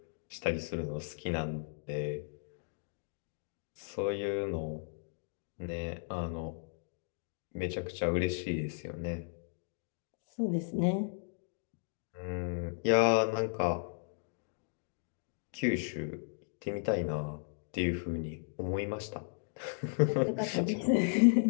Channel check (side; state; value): right; silent; digital silence